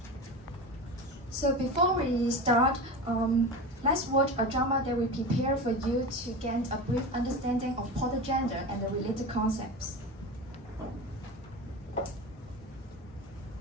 So before we start, let's watch a drama that we prepare for you to gain a brief understanding of portagender and the related concepts.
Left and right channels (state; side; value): normal; both; correlation 0.27